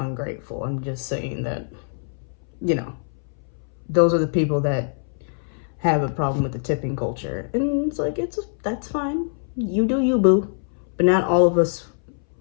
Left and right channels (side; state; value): right; silent; 62 dB below the other